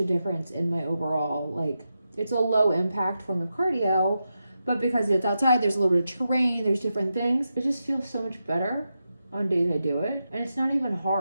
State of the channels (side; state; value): both; inverted; correlation -0.88